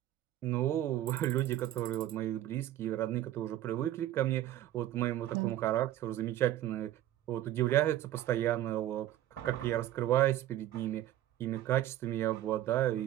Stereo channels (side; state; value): left; quieter; 13.3 dB